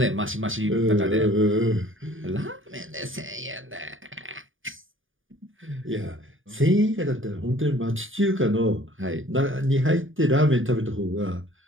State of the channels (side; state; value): left; late; 0.58 ms